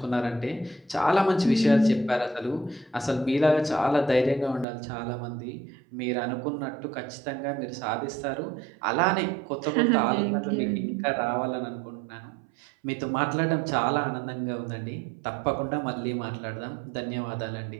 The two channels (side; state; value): left; drops out; at 4.7 s